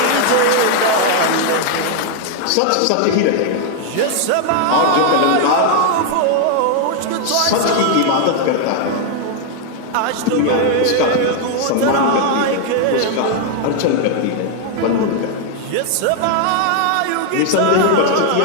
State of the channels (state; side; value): different; both; correlation 0.00